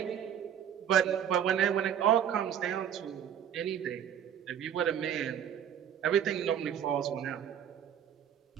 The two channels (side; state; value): left; quieter; 9.3 dB